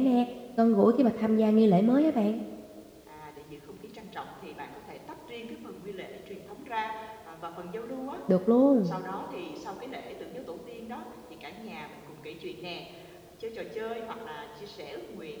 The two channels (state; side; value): identical; both; correlation 1.00